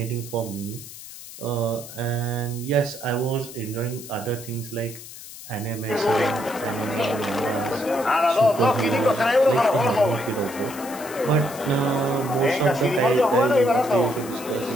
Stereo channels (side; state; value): left; noise; hiss, 15 dB below the sound